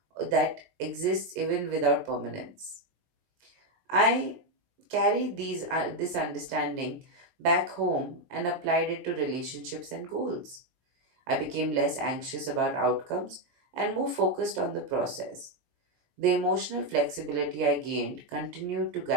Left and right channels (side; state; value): left; late; 17 ms